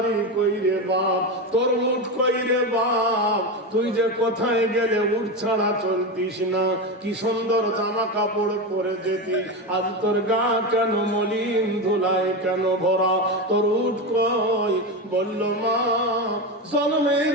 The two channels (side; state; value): both; normal; correlation 0.17